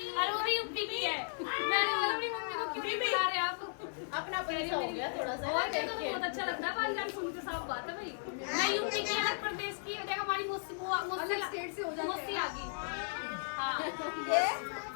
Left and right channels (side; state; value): right; silent; digital silence